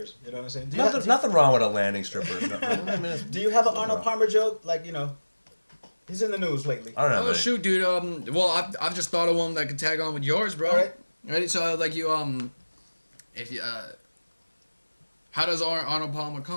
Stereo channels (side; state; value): both; inverted; correlation -1.00